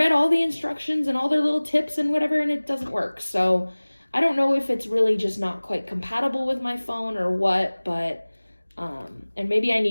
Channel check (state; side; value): inverted; both; correlation -1.00